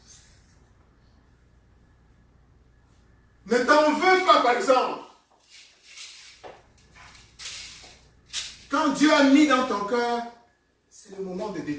Ne t'en veux pas, par exemple. Quand Dieu a mis dans ton cœur, c'est le moment de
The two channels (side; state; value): both; identical; correlation 1.00